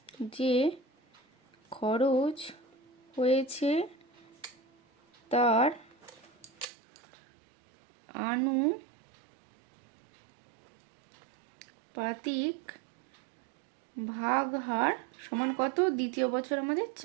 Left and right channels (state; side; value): drops out; left; at 6.7 s